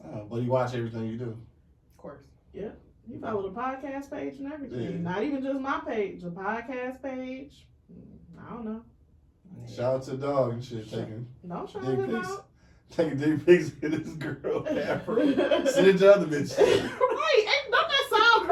Oh, but you watch everything you do. Of course. He followed the podcast page and everything. Yeah. Not even just my page, the podcast page. I don't know. Shout out to the dog and shit, taking Don't shout dick him pics. out. Taking dick pics in this girl. Send it to other bitches. Right. Don't that sound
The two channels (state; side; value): identical; both; correlation 1.00